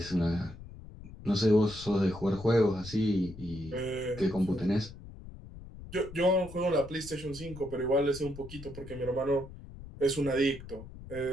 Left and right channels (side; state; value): left; noise; rumble, 15 dB below the sound